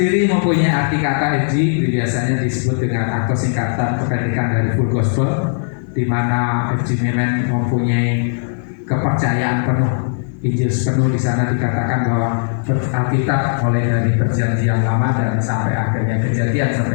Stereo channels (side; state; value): right; silent; 56 dB below the other